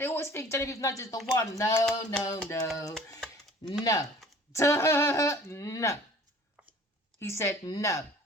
always think Genevieve Nudge is the one. No, no, no. No. No. He said no.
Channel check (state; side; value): normal; both; correlation 0.48